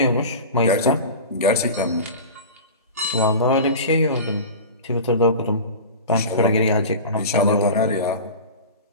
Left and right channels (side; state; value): both; inverted; correlation -0.32